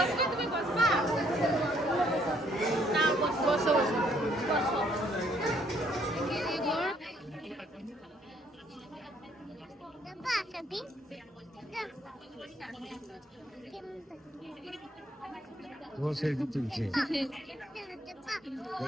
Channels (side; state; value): both; normal; correlation 0.67